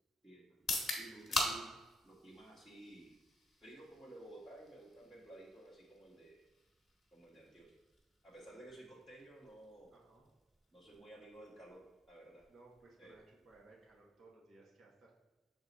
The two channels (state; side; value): normal; both; correlation 0.76